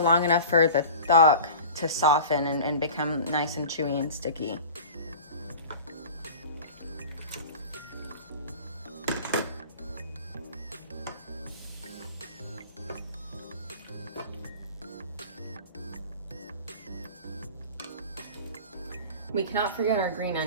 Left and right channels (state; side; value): inverted; both; correlation -0.38